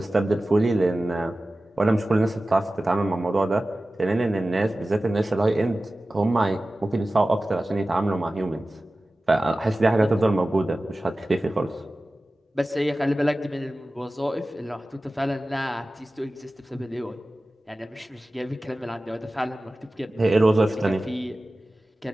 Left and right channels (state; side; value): normal; both; correlation 0.96